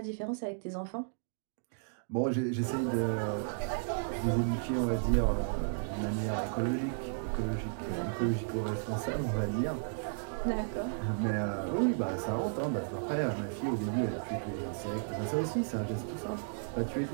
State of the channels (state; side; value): silent; left; digital silence